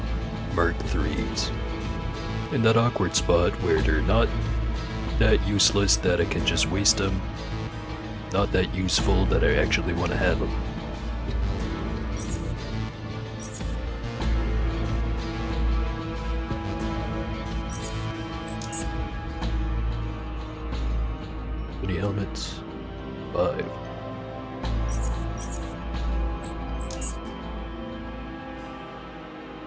Mark 3s. In that awkward spot where they're not that useless that I can just waste them, not that useful that I actually want to have them. How many helmets? 5.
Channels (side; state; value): both; identical; correlation 1.00